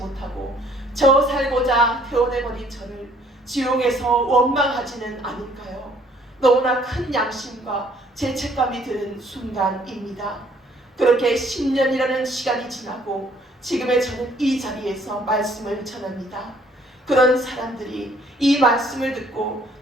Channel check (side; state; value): both; normal; correlation 0.61